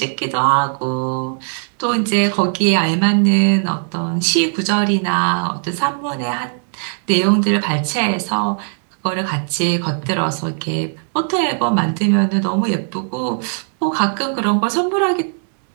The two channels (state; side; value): silent; left; 65 dB below the other